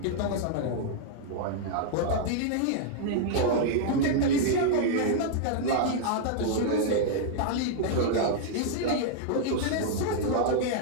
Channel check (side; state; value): both; different; correlation -0.01